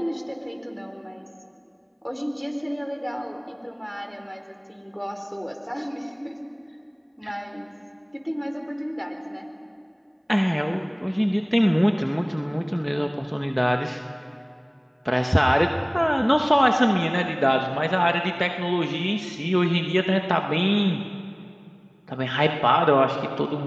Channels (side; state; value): both; identical; correlation 1.00